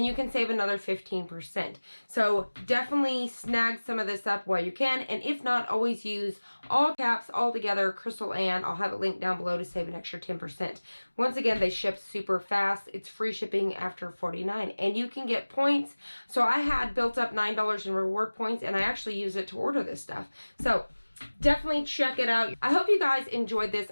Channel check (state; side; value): inverted; both; correlation -1.00